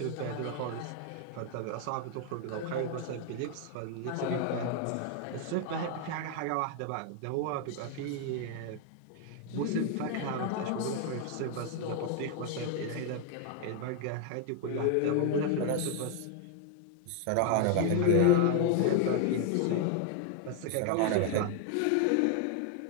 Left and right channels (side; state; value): both; different; correlation 0.00